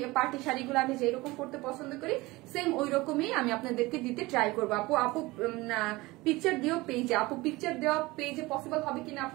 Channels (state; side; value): quieter; left; 21.1 dB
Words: পার্টি শাড়িগুলো আমি যেরকম পড়তে পছন্দ করি সেম ওই রকমই আমি আপনাদেরকে দিতে ট্রাই করবো। আপু পিকচার দিও পেজে, আপু পিকচার দেওয়া পেজে পসিবল হবে কিনা